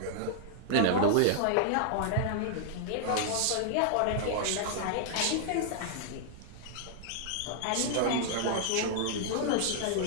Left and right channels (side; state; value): both; different; correlation -0.01